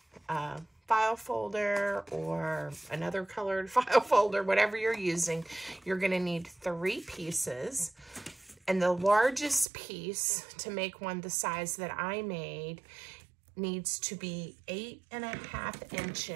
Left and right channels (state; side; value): drops out; left; at 9.7 s